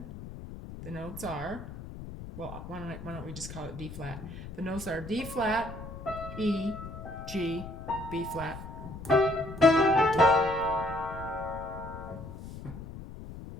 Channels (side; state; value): left; noise; rumble, 11 dB below the sound